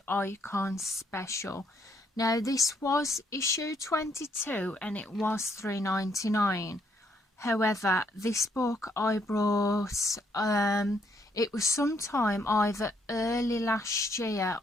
Icon special. Now this was issue 22 and it was $3.99. However, this book I brought, it was sometime either early last year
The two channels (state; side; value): normal; both; correlation 0.71